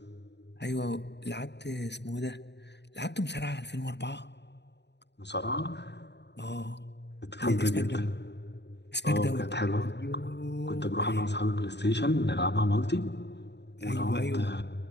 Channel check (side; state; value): right; late; 0.50 ms